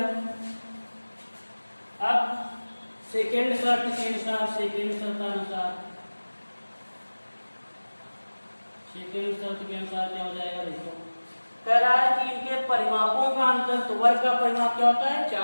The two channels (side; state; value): both; inverted; correlation -1.00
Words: अब सेकेंड शर्त के अनुसार, सेकेंड शर्तानुसार, सेकेंड शर्त के अनुसार क्या हो जाएगा, देखो कह रहा है कि इनके परिमापों का अंतर, तो वर्ग का परिमाप क्या होता है